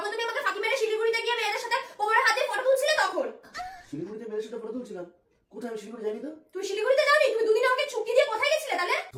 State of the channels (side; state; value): both; identical; correlation 1.00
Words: তুমি আমাকে ফাঁকি মেরে শিলিগুড়িতে গিয়ে মেয়েদের সাথে কোমরে হাত দিয়ে ফটো তুলছিলে তখন। শিলিগুড়িতে মেয়ের সাথে ফটো তুলছিলাম? কোথায়? আমি শিলিগুড়ি জানি তো। তুমি শিলিগুড়িতে যাওনি? তুমি দুদিন আমাকে ছুটি দিয়ে কোথায় গেছিলে তাহলে?